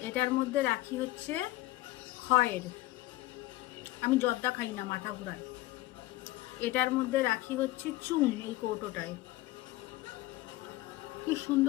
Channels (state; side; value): quieter; right; 17.6 dB